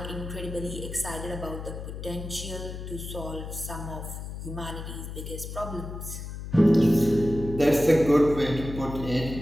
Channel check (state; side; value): noise; left; hum, 8 dB below the sound